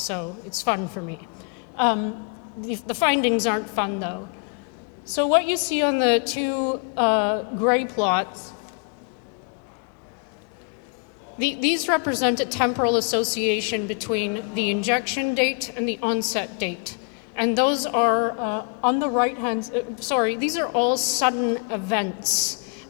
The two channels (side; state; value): right; quieter; 38.6 dB